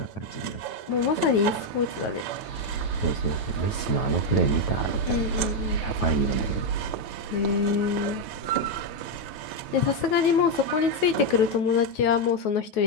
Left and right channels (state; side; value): late; right; 9.3 ms